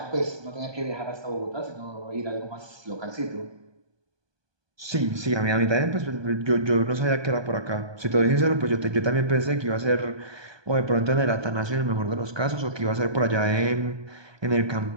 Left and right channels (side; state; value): left; late; 1.2 ms